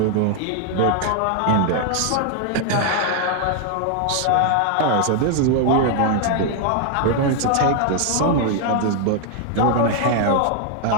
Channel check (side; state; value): both; different; correlation 0.00